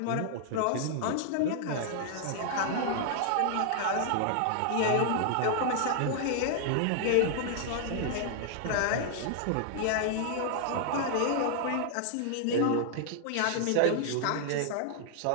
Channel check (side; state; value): both; different; correlation 0.00